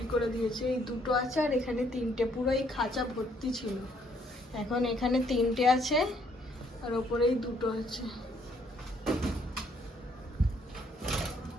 করে দিয়েছে। এই দুটো আছে, আর এখানে তিনটে, পুরো এই খাঁচা ভর্তি ছিল। এখন এখানে তিনটে আছে, আর ওপরেই দুটো আছে।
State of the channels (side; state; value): both; normal; correlation 0.67